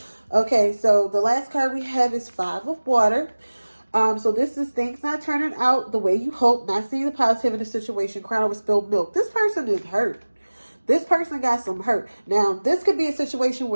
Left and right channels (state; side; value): inverted; both; correlation -1.00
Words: Okay, so the last card we have is 5 of Water. So this is things not turning out the way you hope, not seeing the positive in the situation, crying over spilled milk. This person is hurt. This person got some hurt. Now, this could be a situation